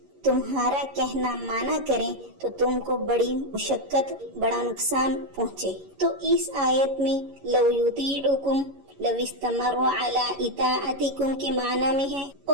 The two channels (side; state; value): left; late; 11 ms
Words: تمہارا کہنا مانا کریں تو تم کو بڑی مشقت، بڑا نقصان پہنچے۔ تو اس آیت میں لو یطیعکم لو استمروا علی اطاعتکم کے معنی میں ہے،